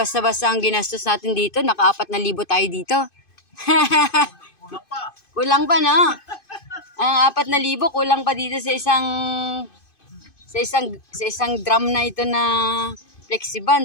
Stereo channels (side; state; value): right; late; 2.5 ms